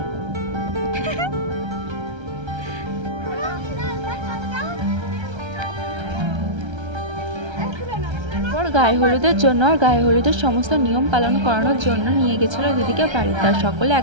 গায়ে হলুদের জন্য আর গায়ে হলুদের সমস্ত নিয়ম পালন করানোর জন্য নিয়ে গেছিল দিদিকে বাড়িতে। আর সকলে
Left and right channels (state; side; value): late; left; 1.3 ms